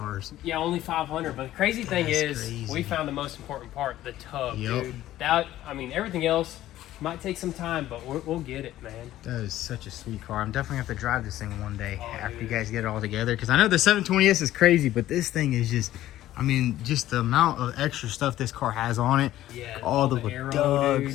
Yeah, only 500. But the crazy thing is, crazy. we found the most important part, the tub, Yep. dude. That, I mean, everything else might take some time, but we'll get it, man. That is such a sweet car. I'm definitely going to have to drive this thing one day after dude. you guys get it all together. Because I know the 720S is crazy, but this thing is just, I mean, just the amount of extra stuff this car has on it. Yeah, all the aero,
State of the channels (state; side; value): quieter; right; 14.0 dB